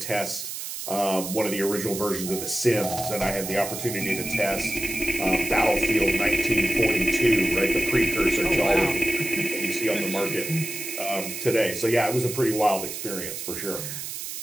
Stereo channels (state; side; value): noise; right; hiss, 7 dB below the sound